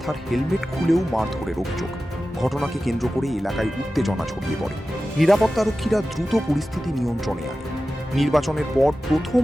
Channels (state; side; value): normal; both; correlation 0.94